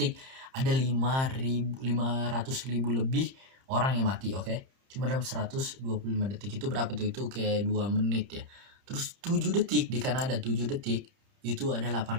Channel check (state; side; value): late; left; 30 ms